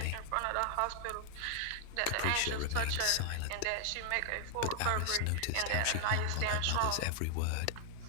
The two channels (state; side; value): different; both; correlation 0.00